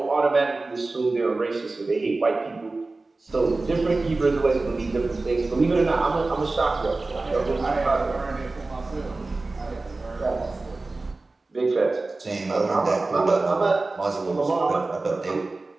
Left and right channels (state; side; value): quieter; left; 3.3 dB